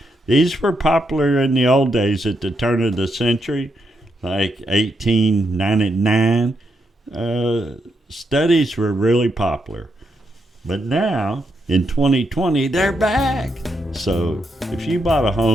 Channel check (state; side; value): normal; both; correlation 0.81